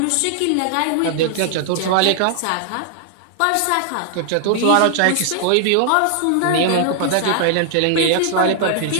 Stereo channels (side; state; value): both; different; correlation 0.00